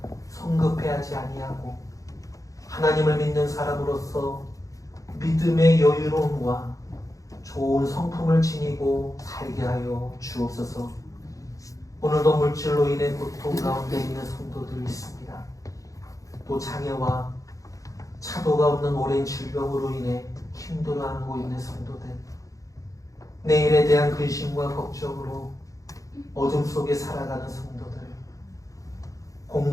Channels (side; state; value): right; late; 0.16 ms